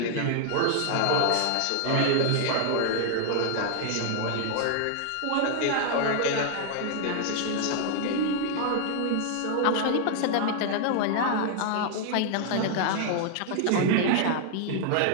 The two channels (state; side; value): different; both; correlation 0.00